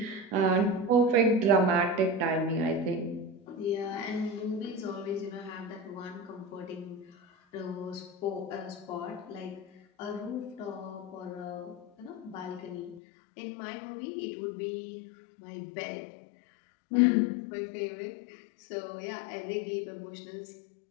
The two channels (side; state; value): right; drops out; at 13.0 s